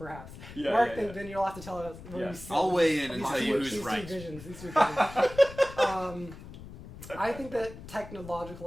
Yeah, Mark, yeah. then you'll have to tell us where Yeah. you sit. I'll weigh in and These tell two- you who's these two right. visions. I think that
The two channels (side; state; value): left; noise; rumble, 15 dB below the sound